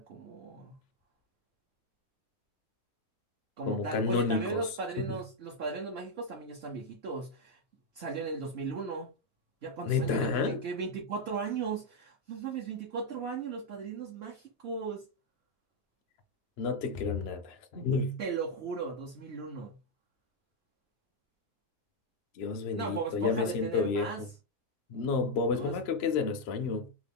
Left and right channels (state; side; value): normal; both; correlation 0.00